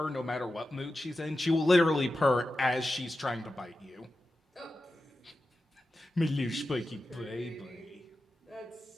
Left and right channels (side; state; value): both; normal; correlation 0.92